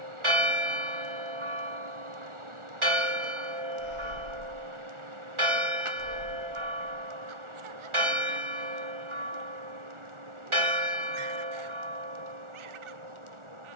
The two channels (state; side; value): late; left; 1.4 ms